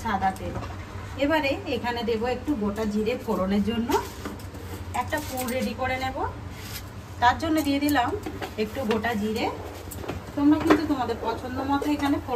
সাদা তেল। এবারে এখানে দেবো একটু গোটা জিরে ফোড়নের জন্য। একটা পুর রেডি করে নেব, তার জন্য দিয়ে দিলাম একটু গোটা জিরে। তোমরা কিন্তু তোমাদের পছন্দ মতো এখানে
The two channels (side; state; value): both; identical; correlation 1.00